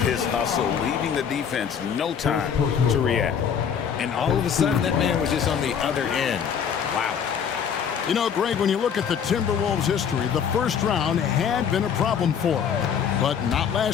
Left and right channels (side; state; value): right; quieter; 7.6 dB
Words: his hustle, leaving the defense no time to react. And all of a sudden, that man was just on the other end. Wow. You know, Greg, when you look at the Timberwolves' history, the first round had been a problem for them. But not